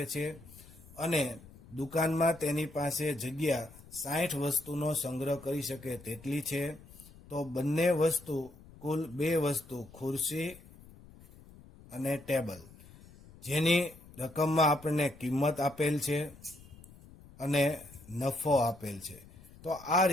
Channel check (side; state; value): left; noise; rumble, 21 dB below the sound